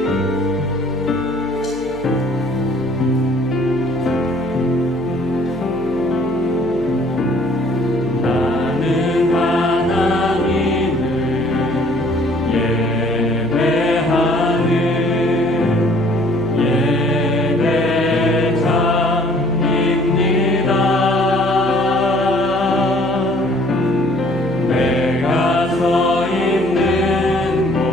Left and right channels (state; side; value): noise; right; hum, 18 dB below the sound